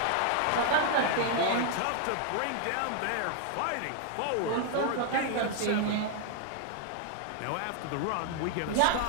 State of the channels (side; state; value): both; different; correlation 0.00